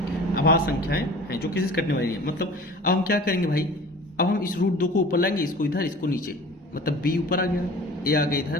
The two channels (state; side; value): normal; both; correlation 0.42